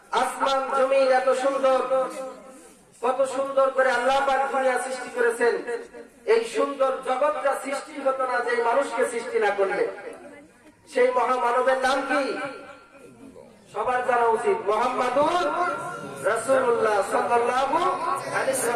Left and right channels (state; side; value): identical; both; correlation 1.00